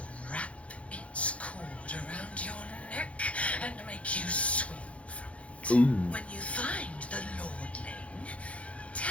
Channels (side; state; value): right; late; 0.063 ms